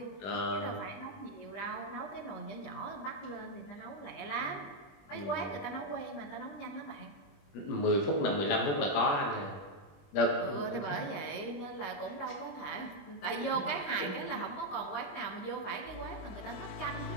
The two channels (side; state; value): right; late; 21 ms